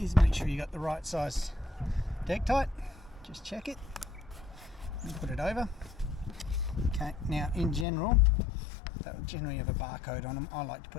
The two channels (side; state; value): right; drops out; at 7.9 s